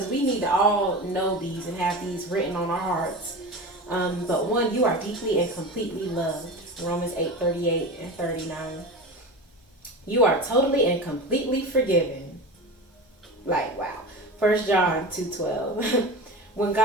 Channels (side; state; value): both; normal; correlation 0.29